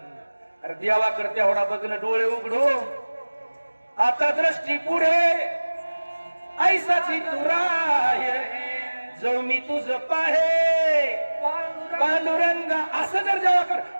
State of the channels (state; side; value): inverted; both; correlation -1.00